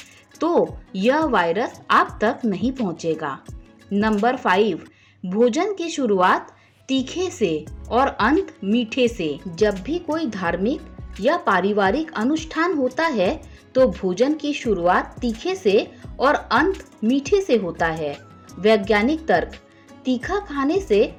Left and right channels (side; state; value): both; identical; correlation 1.00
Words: तो यह वायरस आप तक नहीं पहुंचेगा। नंबर 5, भोजन की शुरुआत तीखे से और अंत मीठे से। जब भी कोई धार्मिक या पारिवारिक अनुष्ठान होता है तो भोजन की शुरुआत तीखे से और अंत मीठे से होता है। वैज्ञानिक तर्क। तीखा खाने से